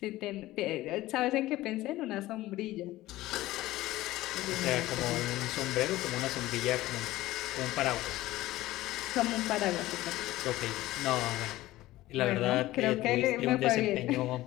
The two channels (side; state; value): right; quieter; 16.8 dB